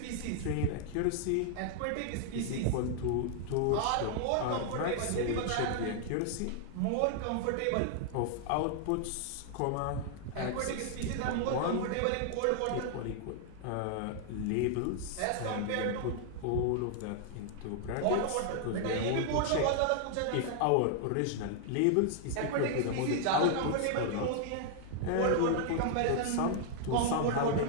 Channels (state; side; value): different; both; correlation 0.00